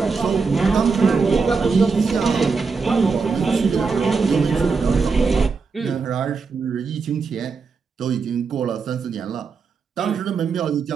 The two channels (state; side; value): quieter; left; 4.9 dB